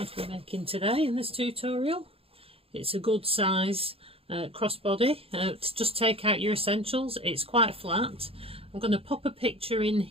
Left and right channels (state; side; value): late; left; 0.28 ms